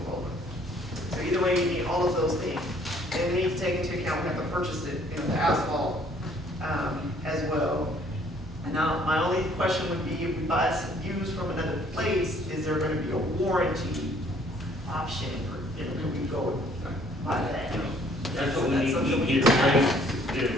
roller. So either way, you need all of those things. And we need to take into account, we have to purchase it, you know, the asphalt as well. Now, my only question would be, if we buy some used from another place, is there gonna be a warranty option, or, you know, can we go buy that? That's what we need to get ready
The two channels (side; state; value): both; normal; correlation 0.61